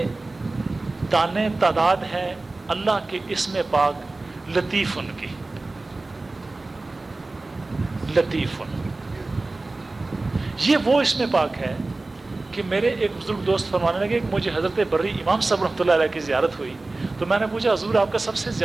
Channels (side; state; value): left; quieter; 3.2 dB